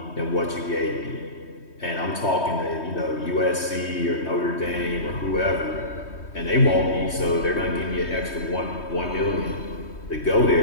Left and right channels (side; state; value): right; late; 3.2 ms